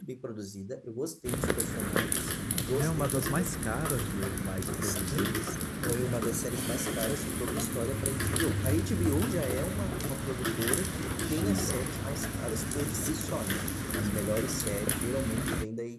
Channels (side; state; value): both; identical; correlation 1.00